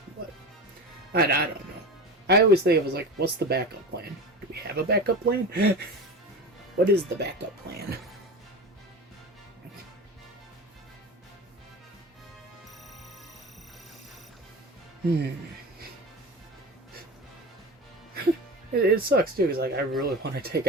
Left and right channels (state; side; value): normal; both; correlation 0.28